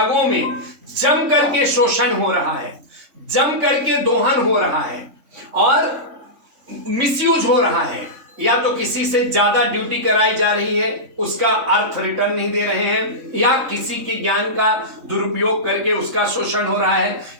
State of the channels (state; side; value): late; left; 3.5 ms